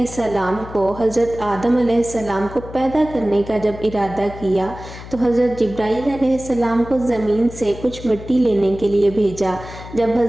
को हज़रत आदम अलैहिस्सलाम को पैदा करने का जब इरादा किया तो हज़रत जिब्राइल अलैहिस्सलाम को ज़मीन से कुछ मिट्टी लेने के लिए भेजा। जब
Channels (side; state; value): left; noise; hum, 14 dB below the sound